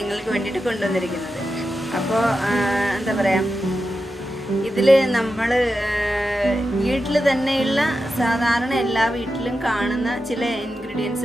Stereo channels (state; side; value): normal; both; correlation 0.90